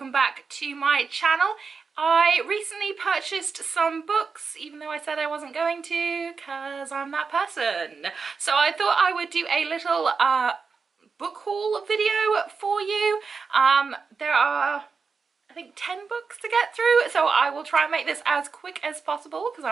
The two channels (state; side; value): quieter; left; 5.1 dB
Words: back to my channel. I recently purchased some books, even though I said I wasn't going to, because I'm that person. So I thought I would do a little book haul video for you. There are, I think, 10 books to get through, so I will try and make this as quick as possible because